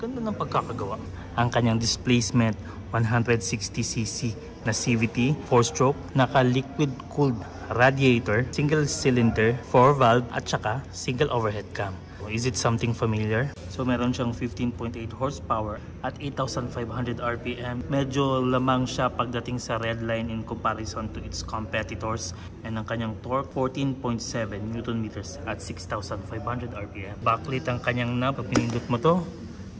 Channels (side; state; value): both; identical; correlation 1.00